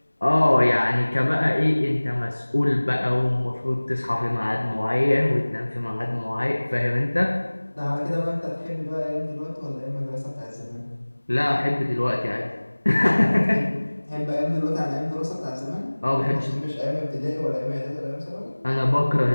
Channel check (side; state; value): both; inverted; correlation -1.00